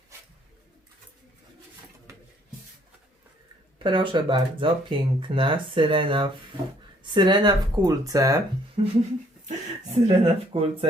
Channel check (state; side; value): normal; both; correlation 0.63